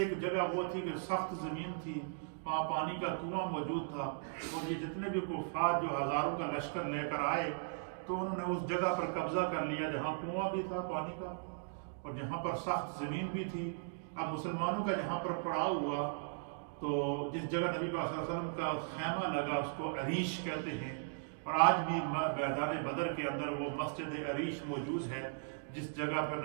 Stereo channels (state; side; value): silent; left; digital silence